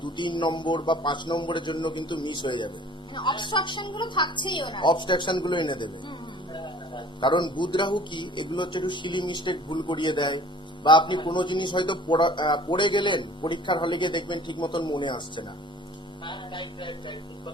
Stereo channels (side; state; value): both; normal; correlation 0.49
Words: 2-3 নম্বর বা 5 নম্বরের জন্য কিন্তু মিস হয়ে যাবে। মানে অবস্ট্রাকশন গুলো থাকছেই ওনার। অবস্ট্রাকশন গুলো এনে দেবে। কারণ বুধ রাহু কি, এগুলো হচ্ছে একটু সিলি মিস্টেক, ভুল করিয়ে দেয়। বা আপনি কোনো জিনিস হয়তো পড়ে গেলেন, পরীক্ষার হলে গিয়ে দেখবেন ঠিক মতন মনে আসছে না। হ্যাঁ, রাইট রাইট রাইট, ঠিক